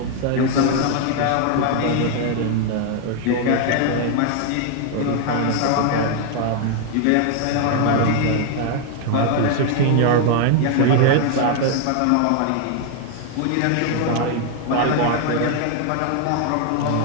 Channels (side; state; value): both; different; correlation 0.00